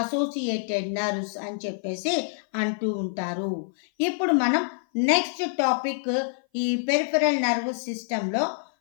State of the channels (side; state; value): right; silent; 58 dB below the other